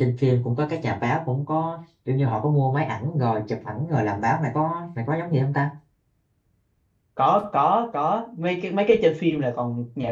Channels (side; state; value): both; identical; correlation 1.00